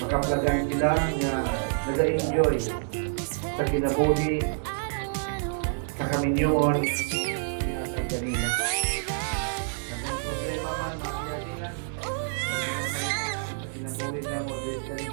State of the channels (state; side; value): silent; left; 60 dB below the other